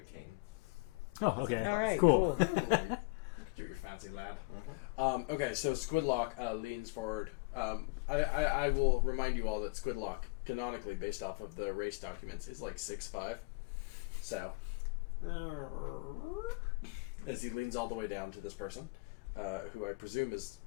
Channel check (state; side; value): quieter; right; 28.8 dB